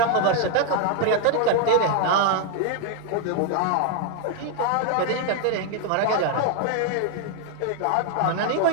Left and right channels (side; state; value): both; different; correlation 0.00